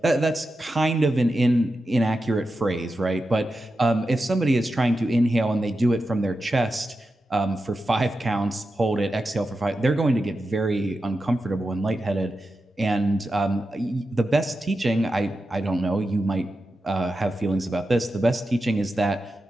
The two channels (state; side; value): normal; both; correlation 0.90